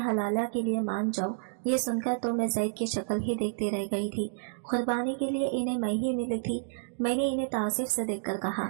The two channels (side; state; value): left; silent; digital silence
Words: के लिए मान जाओ। ये सुनकर तो मैं जैद की शक्ल ही देखती रह गई थी। कुर्बानी के लिए इन्हें मैं ही मिली थी। मैंने इन्हें तासीफ से देखकर कहा,